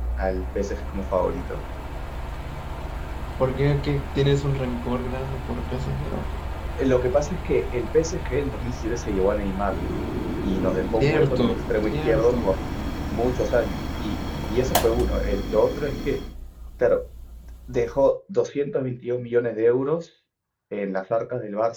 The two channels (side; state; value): both; identical; correlation 1.00